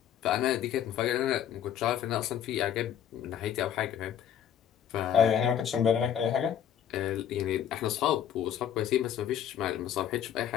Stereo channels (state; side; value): quieter; right; 9.8 dB